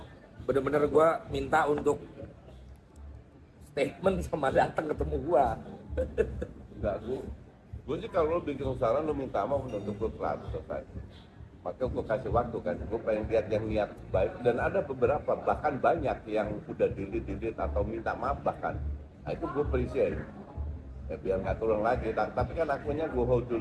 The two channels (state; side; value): identical; both; correlation 1.00